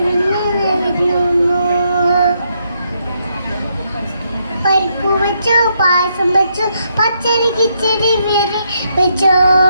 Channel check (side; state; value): both; inverted; correlation -0.77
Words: പരിപ്പ് വെച്ചു പായസം വെച്ചു പച്ചടി കിച്ചടി വേറെ വെച്ചോ